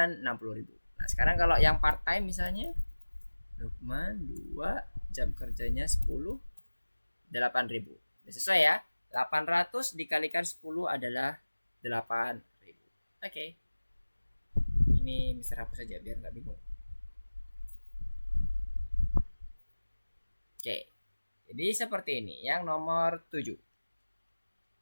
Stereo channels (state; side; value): inverted; both; correlation -1.00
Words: 60.000. Nah sekarang kalau yang part time misalnya, Lukman 2 jam kerjanya 10 8.000. Sesuai ya, 800 dikalikan 10 adalah 8.000. Oke. Ini Mister hapus saja biar nggak bingung. Oke. Jadi seperti ini yang nomor 7.